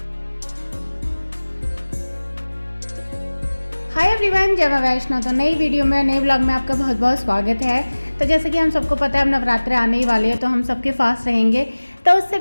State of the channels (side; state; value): both; inverted; correlation -1.00